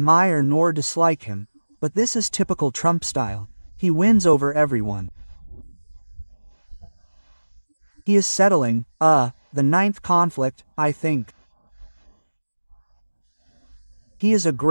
nor dislike him, but this is typical Trump style. He wins over everyone. He is settling, the ninth conflict, I think. He is a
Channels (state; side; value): inverted; both; correlation -1.00